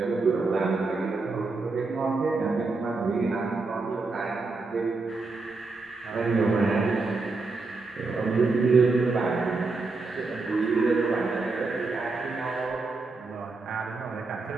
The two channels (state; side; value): quieter; left; 3.8 dB